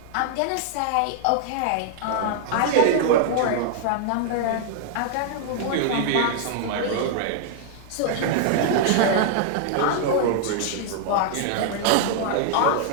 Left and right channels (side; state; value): both; different; correlation 0.00